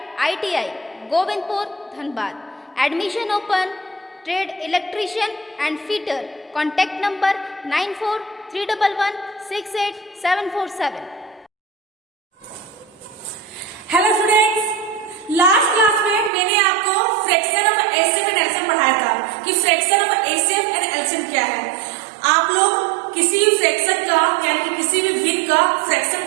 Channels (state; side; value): drops out; left; at 16.3 s